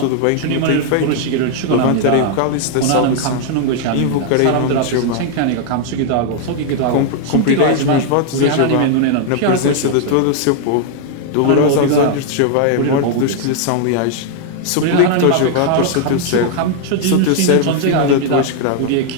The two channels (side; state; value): both; different; correlation 0.00